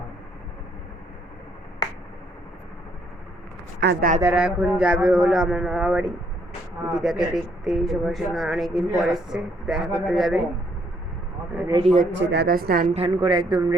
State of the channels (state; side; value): normal; both; correlation 0.69